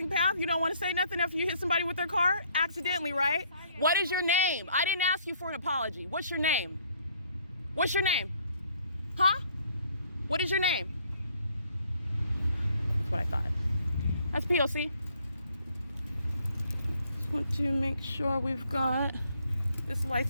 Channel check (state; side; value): inverted; both; correlation -0.64